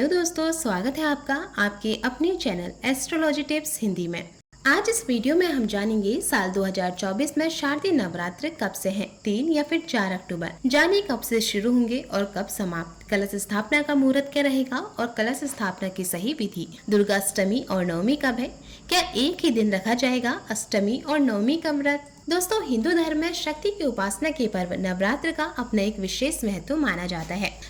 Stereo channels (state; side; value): identical; both; correlation 1.00